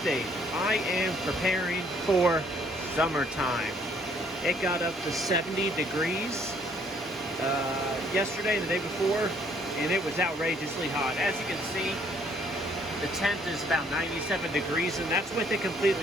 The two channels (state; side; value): normal; both; correlation 0.63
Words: I am preparing for summertime. It got up to 70 degrees yesterday and the day before, and it was outrageously hot. As you can see, the tent is about 97 degrees, and that's with it